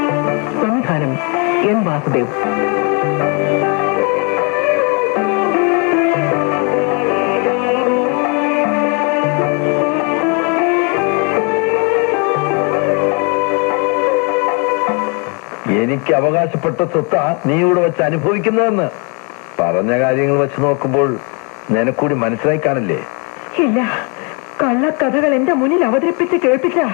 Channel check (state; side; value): quieter; right; 34.5 dB